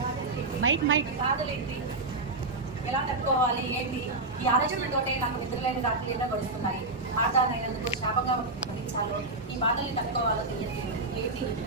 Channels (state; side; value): quieter; left; 3.2 dB